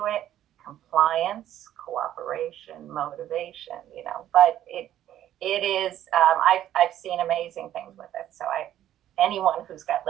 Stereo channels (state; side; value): quieter; left; 12.0 dB